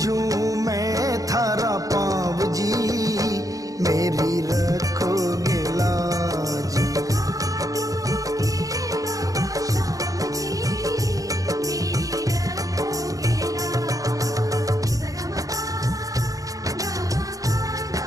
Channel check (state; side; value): late; left; 0.17 ms